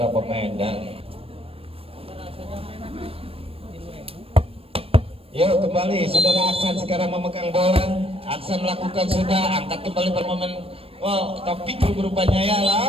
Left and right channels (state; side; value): late; left; 0.28 ms